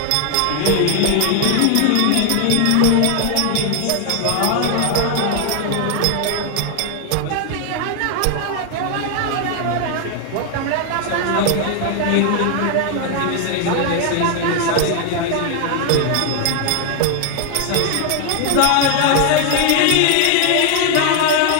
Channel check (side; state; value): both; different; correlation 0.00